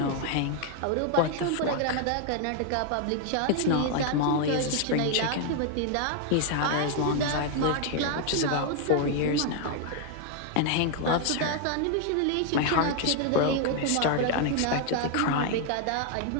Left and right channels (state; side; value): different; both; correlation 0.00